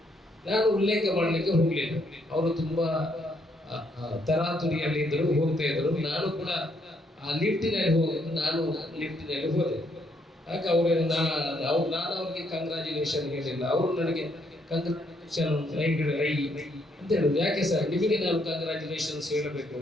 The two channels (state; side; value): normal; both; correlation 0.72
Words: ನಾನು ಉಲ್ಲೇಖ ಮಾಡಲಿಕ್ಕೆ ಹೋಗಲಿಲ್ಲ. ಅವರು ತುಂಬಾ ತರಾತುರಿಯಲ್ಲಿ ಇದ್ರು, ಹೋಗ್ತಾ ಇದ್ರು. ನಾನು ಕೂಡ ಆ ಲಿಫ್ಟಿನಲ್ಲಿ ನಾನು ಲಿಫ್ಟಿನಲ್ಲಿ ಹೋದೆ. ಆಗ ನಾನು ಅವ್ರಿಗೆ ಕಂಗ್ರಾಚುಲೇಷನ್ ಹೇಳಿಲ್ಲ. ಅವರು ನನಗೆ ಕಂಗ್ರಾಚುಲೇಷನ್ ರೈ ಅಂತ ಹೇಳಿದ್ರು. ಯಾಕೆ ಸರ್ ನಿಮಗೆ ನಾನು ಕಂಗ್ರಾಚುಲೇಷನ್ಸ್ ಹೇಳಬೇಕು?